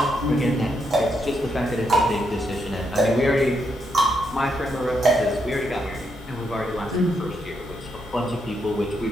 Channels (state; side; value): normal; both; correlation 0.79